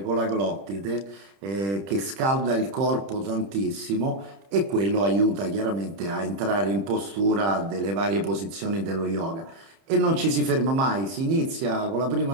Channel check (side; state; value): left; late; 30 ms